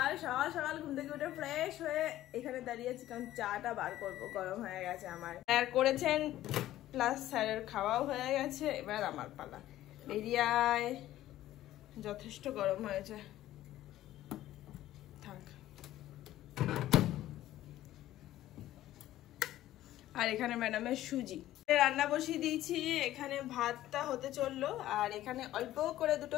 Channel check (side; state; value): right; quieter; 14.1 dB